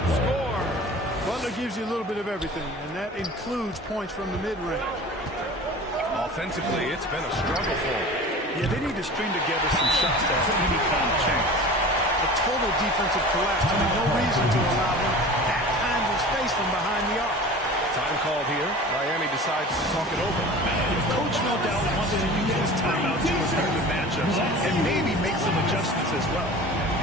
score. Butler gives you a little bit of everything, and that includes points from the mid-range. Offensively, it's been a struggle for him. Yeah, they need to string together some shots to have any kind of chance. A total defensive collapse. I mean, no reason to allow him that kind of space from behind the arc. Time called here. Miami decides to talk it over. Coach no doubt wants to use this timeout to review the matchups and maybe make some adjustments as well.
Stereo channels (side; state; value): both; normal; correlation 0.39